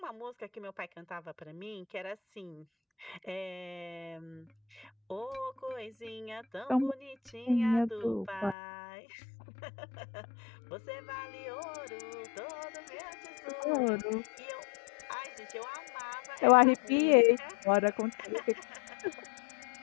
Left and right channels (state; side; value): drops out; right; at 8.6 s